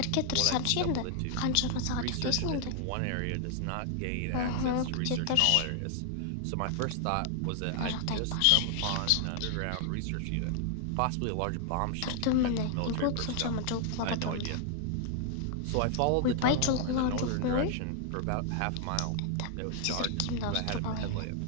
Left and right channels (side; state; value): both; different; correlation 0.00